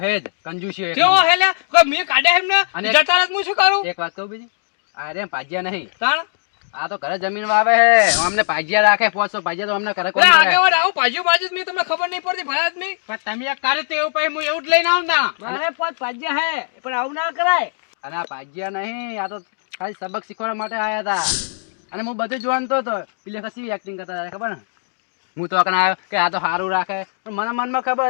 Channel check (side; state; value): right; silent; digital silence